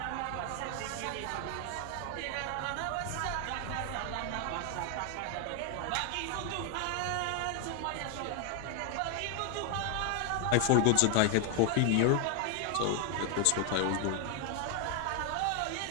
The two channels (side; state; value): both; different; correlation 0.00